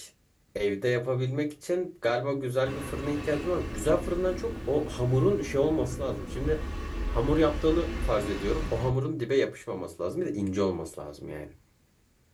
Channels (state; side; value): identical; both; correlation 1.00